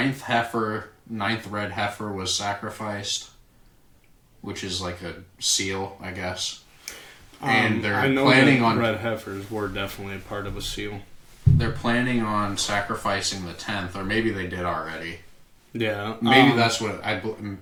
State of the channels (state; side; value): identical; both; correlation 1.00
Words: red heifer was sacrificed, which is like a seal, I guess. And they're planning on red heifers were definitely a part of a seal. They're planning on sacrificing the 10th, or maybe they did already. Yeah. Maybe that's what